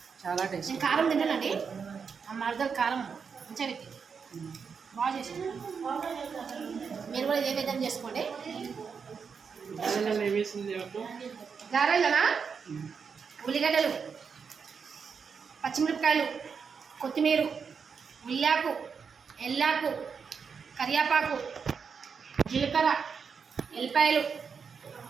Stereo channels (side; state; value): left; quieter; 6.0 dB